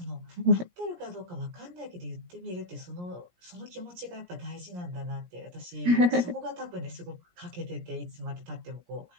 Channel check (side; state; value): left; late; 17 ms